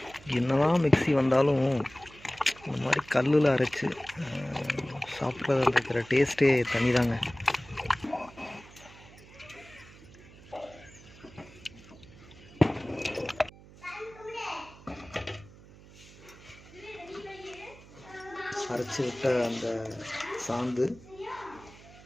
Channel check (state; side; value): noise; right; hum, 21 dB below the sound